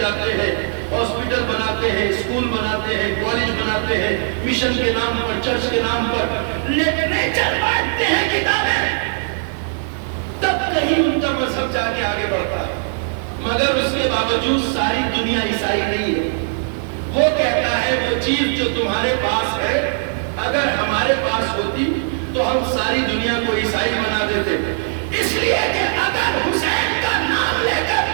ہیں، ہاسپٹل بناتے ہیں، اسکول بناتے ہیں، کالج بناتے ہیں، مشن کے نام پر، چرچ کے نام پر لٹریچر بانٹتے ہیں، کتابیں، تب کہیں ان کا مذہب جا کے آگے بڑھتا ہے. مگر اس کے باوجود ساری دنیا عیسائی نہیں ہے. وہ کہتا ہے وہ چیز جو تمہارے پاس ہے اگر ہمارے پاس ہوتی تو ہم ساری دنیا کو عیسائی بنا دیتے. اس لیے کہ اگر حسین کا نام لے کر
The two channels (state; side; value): silent; left; 60 dB below the other